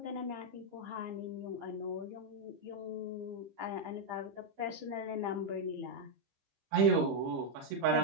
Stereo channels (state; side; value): late; left; 15 ms